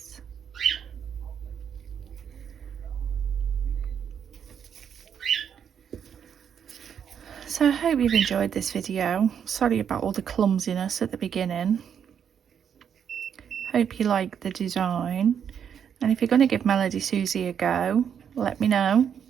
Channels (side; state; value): left; quieter; 8.0 dB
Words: So I hope you've enjoyed this video. Sorry about all the clumsiness at the beginning. Hope you like the design. And if you're going to give Melodysusie a go, let me know,